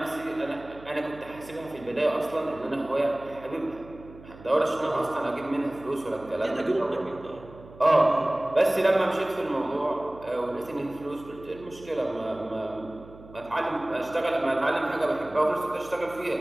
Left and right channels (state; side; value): noise; right; hum, 19 dB below the sound